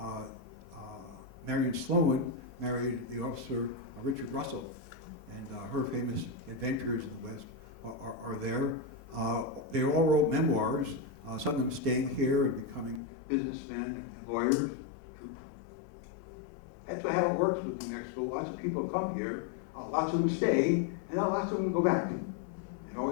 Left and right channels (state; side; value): drops out; right; at 13.0 s